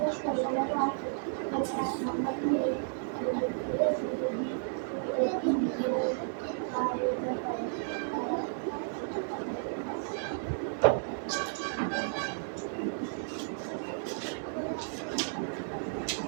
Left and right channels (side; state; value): left; silent; digital silence